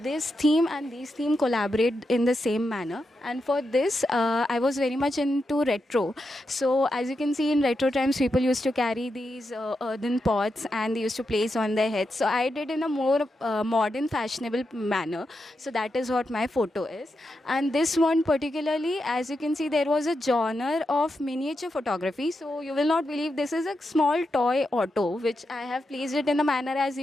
this theme and these theme collaborate in the same manner. And for this, I was very much into retro. So as you can see, in retro times, people used to carry these earthen pots and they used to place on their heads. So I did in a more modern, fashionable manner. So that is what my photo is. And this one particularly, as you can see, there was a genre of miniature photography. So you will not believe, this is a small toy auto, which I have placed it in a manner as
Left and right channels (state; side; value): normal; both; correlation 0.86